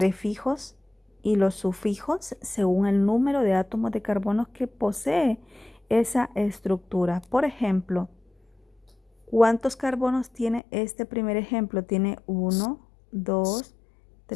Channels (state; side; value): drops out; right; at 10.6 s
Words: y los sufijos según el número de átomos de carbono que posee esa estructura. Por ejemplo, ¿cuántos carbonos tiene este primer ejemplo? Tiene 1, 2,